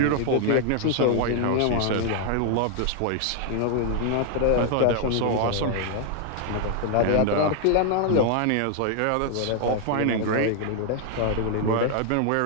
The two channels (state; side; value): different; both; correlation 0.00